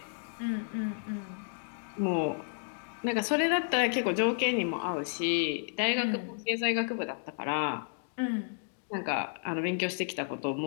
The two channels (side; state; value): right; silent; digital silence